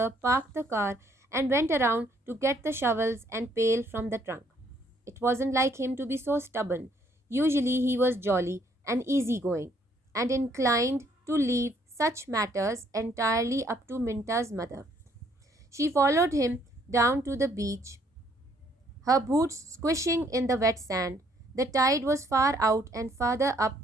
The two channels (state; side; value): normal; both; correlation 0.66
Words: parked the car and went around to get the shovels and pail from the trunk. It wasn't like him to be so stubborn. Usually he was jolly and easygoing and inclined to leave such matters entirely up to Minta's mother. She followed him down to the beach, her boots squishing in the wet sand. The tide was far out, and farther up